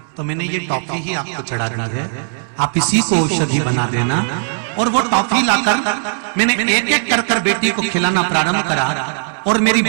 तो मैंने ये टॉफी ही आपको चढ़ाना है, आप इसी को औषधि बना देना। और वो टॉफी लाकर मैंने एक एक कर बेटी को खिलाना प्रारंभ करा और मेरी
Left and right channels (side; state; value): left; silent; 65 dB below the other